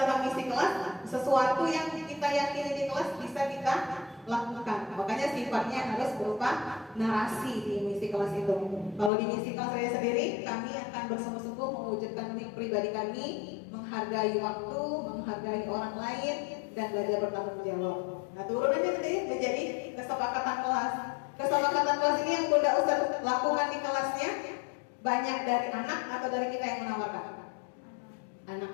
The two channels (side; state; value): right; drops out; at 9.1 s